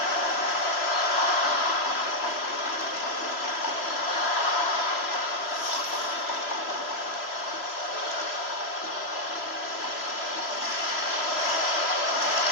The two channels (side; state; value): right; late; 3.0 ms